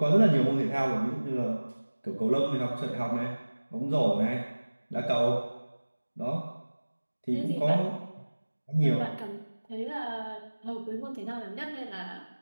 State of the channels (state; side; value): inverted; both; correlation -1.00